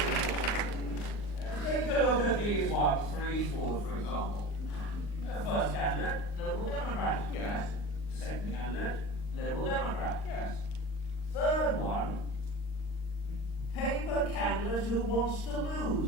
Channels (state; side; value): late; right; 39 ms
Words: Take a look at these ones for Eastward, for example. First candidate, Liberal Democrat. Yes. Second candidate, Liberal Democrat. Yes. Third one, paper candidate who wants to lose.